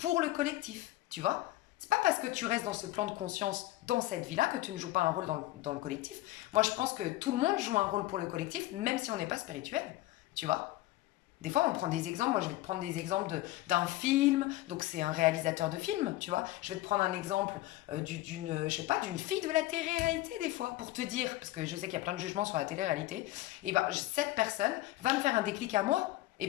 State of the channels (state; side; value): quieter; right; 17.0 dB